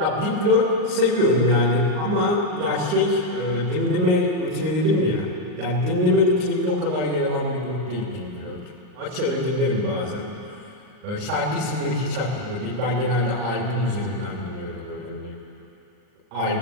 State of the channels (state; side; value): late; left; 39 ms